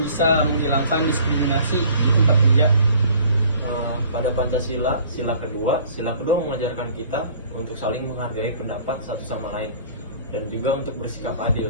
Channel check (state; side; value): inverted; both; correlation -0.52